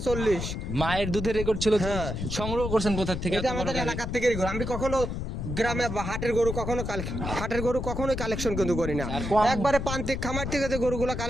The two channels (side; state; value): left; noise; rumble, 4 dB below the sound